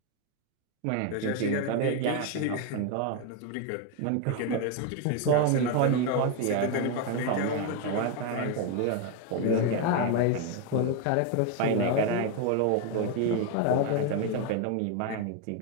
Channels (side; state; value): both; different; correlation 0.02